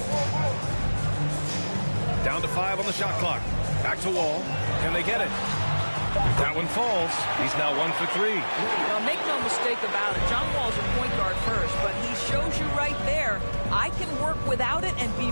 Down to 5 on the shot clock. Back to Wall. Can they get it? That one falls. He's now 1 for 3. Well, make no mistake about it. John Wall's a point guard first, but he shows you right there, I can work without it and be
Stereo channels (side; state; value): both; inverted; correlation -1.00